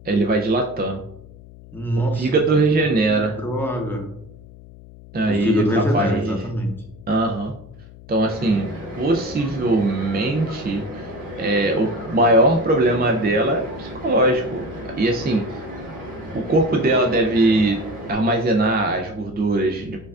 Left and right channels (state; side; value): noise; left; hum, 20 dB below the sound